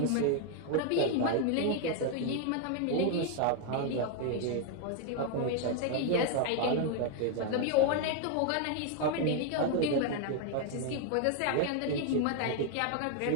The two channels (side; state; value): both; different; correlation 0.00